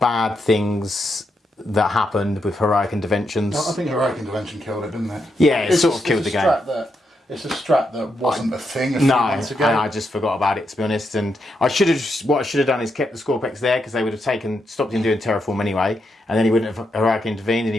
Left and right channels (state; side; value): normal; both; correlation 0.82